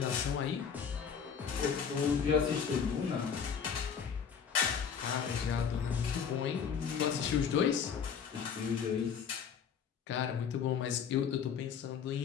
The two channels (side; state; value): right; quieter; 7.0 dB